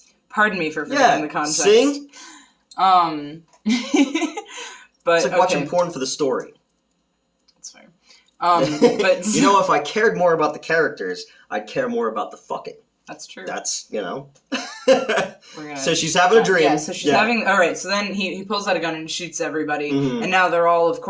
Pardon me for forgetting the context. Sing? But it's like watching porn for the story. That's fair. But you know, if I cared more about the characters, I'd care more about the fucking. That's true. That's, you know. So she's having a dream. Yeah, so she's having... Alright, so then he pulls out a gun and shoots everybody. Mm-hmm. And now they're all, of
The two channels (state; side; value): identical; both; correlation 1.00